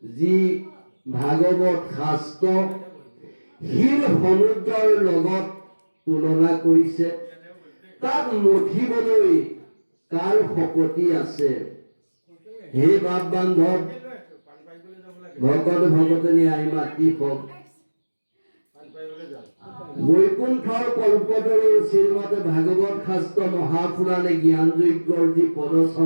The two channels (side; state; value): both; inverted; correlation -1.00